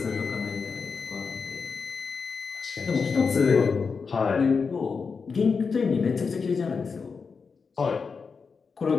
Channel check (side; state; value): right; quieter; 5.2 dB